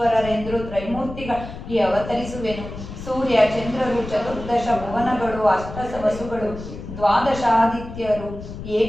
ತ್ರೈಮೂರ್ತಿಗಳಿಗೆ ಅವತರಿಸುವೆನು. ಸೂರ್ಯ, ಚಂದ್ರರು, ಚತುರ್ದಶ ಭುವನಗಳು, ಅಷ್ಟ ವಸುಗಳು, ದ್ವಾದಶಾದಿತ್ಯರು,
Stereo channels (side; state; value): left; noise; rumble, 11 dB below the sound